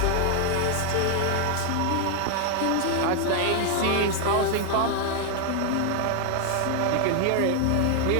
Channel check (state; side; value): different; both; correlation 0.00